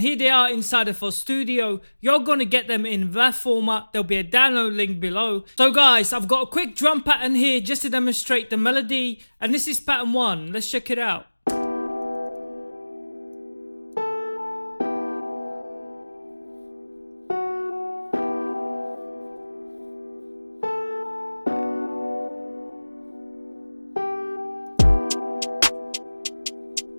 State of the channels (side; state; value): both; inverted; correlation -1.00